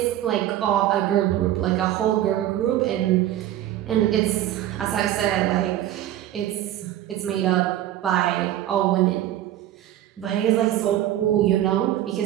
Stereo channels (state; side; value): quieter; left; 12.9 dB